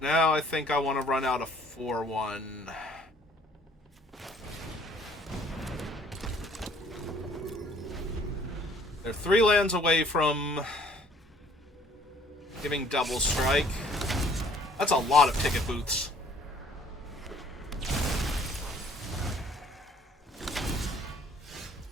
Now I think I want to run out a 4-1. They're 3 lands away from giving double strike. That's a lot of ticket booths.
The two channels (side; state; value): both; normal; correlation 0.57